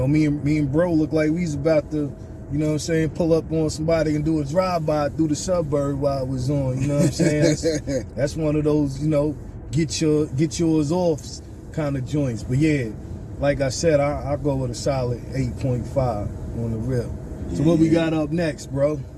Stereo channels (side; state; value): both; identical; correlation 1.00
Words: me and bro look like we was about to, pull up on somebody and do a drive-by through the suburb while I was on, you know what I'm saying? That's one of those, get yours off kind of joints. But yeah, like I said, I'll go with a solid 8.5 on the rip. So what we got up next, bro?